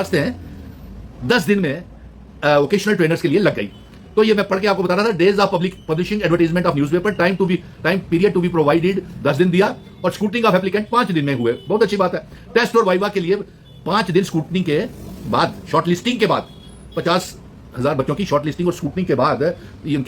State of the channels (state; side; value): identical; both; correlation 1.00